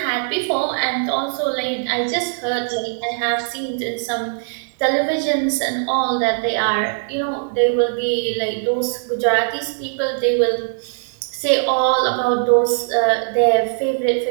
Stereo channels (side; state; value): left; silent; digital silence